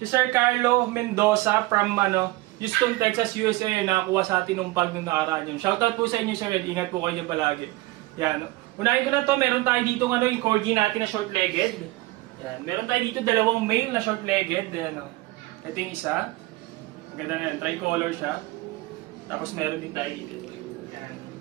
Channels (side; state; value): left; quieter; 20.1 dB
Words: Sir Carlo Mendoza from Houston, Texas, USA. Nakakuha sa atin ng pag nung nakaraan yun. Shoutout po sa inyo, sir. Ingat po kayo palagi. Yan. Unahin ko na to, meron tayo dito yung corgi natin na short-legged. Yan. Meron tayo dito 2 male na short-legged. Ito yung isa. Maganda yan. Tricolor siya. Tapos meron din tayo dito. Yan.